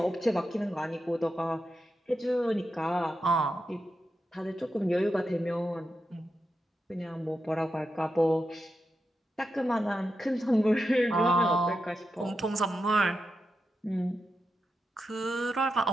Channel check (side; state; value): both; normal; correlation 0.87